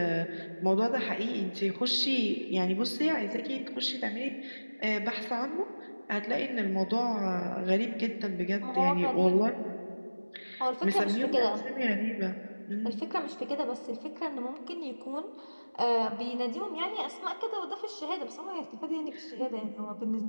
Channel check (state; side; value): inverted; both; correlation -1.00